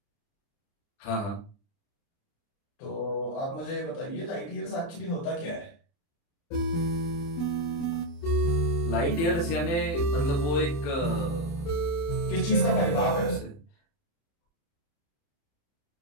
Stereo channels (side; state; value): right; late; 29 ms